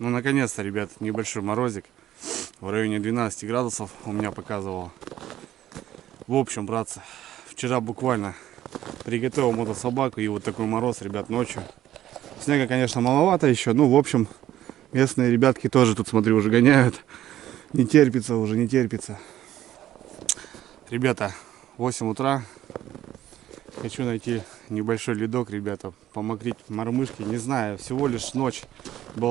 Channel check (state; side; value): quieter; left; 12.8 dB